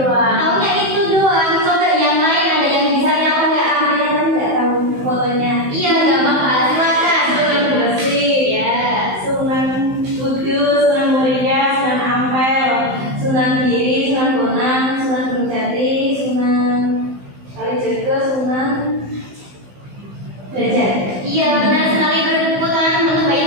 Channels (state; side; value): late; left; 15 ms